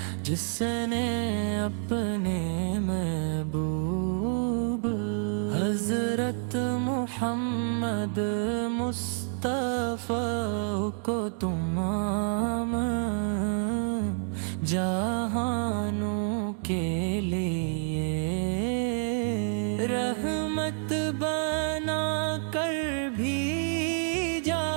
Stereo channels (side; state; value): left; silent; 59 dB below the other